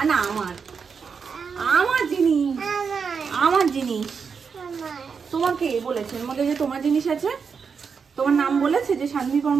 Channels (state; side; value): quieter; left; 5.9 dB